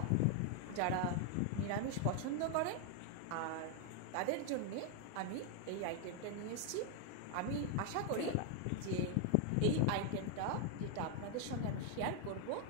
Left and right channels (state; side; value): different; both; correlation 0.00